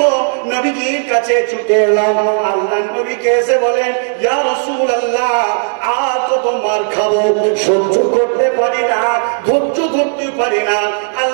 নবীজির কাছে ছুটে এলাম। আল্লাহর নবীকে এসে বলেন, ইয়া রাসূলুল্লাহ, আর কত মার খাবো, সহ্য করতে পারি না, ধৈর্য ধরতে পারি না,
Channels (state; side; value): silent; left; digital silence